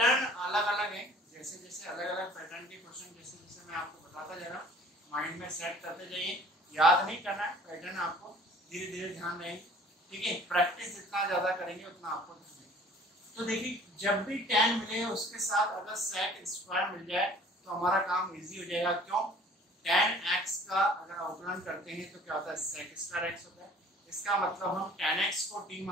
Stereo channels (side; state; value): both; normal; correlation 0.51